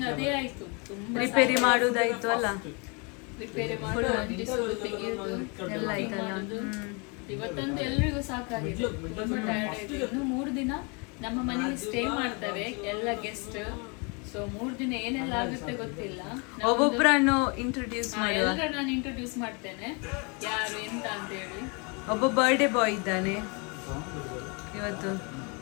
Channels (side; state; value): right; quieter; 32.5 dB